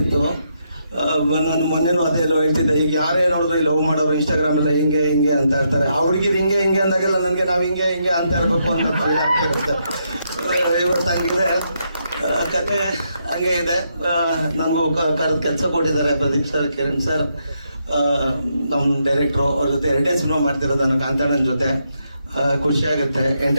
ನಾನು ಮೊನ್ನೆನೂ ಅದೇ ಎಲ್ಲೋ ಹೇಳ್ತಿದ್ದೆ, ಈಗ ಯಾರೇ ನೋಡಿದ್ರು ಲವ್ ಮಾಡೋರು ಇನ್ಸ್ಟಾಗ್ರಾಮ್ ಎಲ್ಲ ಹಿಂಗೆ ಹಿಂಗೆ ಅಂತ ಇರ್ತಾರೆ. ಆ ಹುಡುಗಿರು ಹಿಂಗೆ ಹಿಂಗೆ ಅಂದಾಗೆಲ್ಲ ನನಗೆ ನಾವು ಹಿಂಗೆ ಹಿಂಗೆ ಅಂತ ಇರಬೇಕು ಅಂತ ಫೀಲ್ ಆಗ್ತಿರುತ್ತೆ. ಇವತ್ತು ಹಂಗಿದೆ ಕತೆ, ಹಂಗೆ ಇದೆ. ನನಗೂ ಕರೆದು ಕೆಲಸ ಕೊಟ್ಟಿದ್ದಾರೆ ಪ್ರದೀಪ್ ಸರ್, ಕಿರಣ್ ಸರ್, ನಮ್ಮ ಡೈರೆಕ್ಟ್ರು. ಅವ್ರ ಜೊತೆ 2 ಸಿನಿಮಾ ಮಾಡ್ತಿರೋದು ನಾನು ಕಾಂತಾಣನ ಜೊತೆ. ಖುಷಿ ಆಗುತ್ತೆ.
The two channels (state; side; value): inverted; both; correlation -0.78